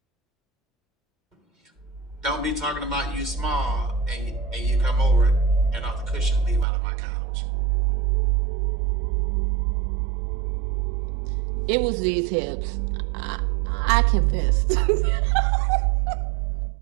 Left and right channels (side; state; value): left; drops out; at 6.7 s